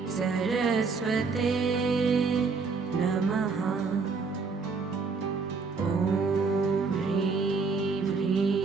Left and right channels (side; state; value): left; quieter; 4.6 dB